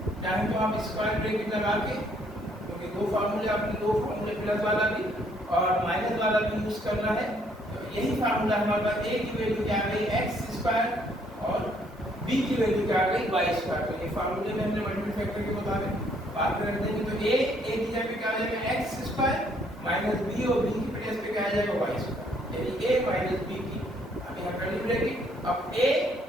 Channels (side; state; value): both; normal; correlation 0.66